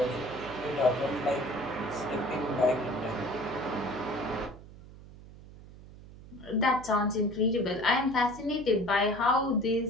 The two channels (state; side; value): noise; right; hum, 18 dB below the sound